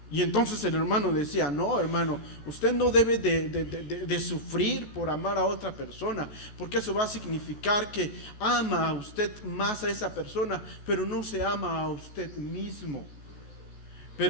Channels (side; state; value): right; late; 14 ms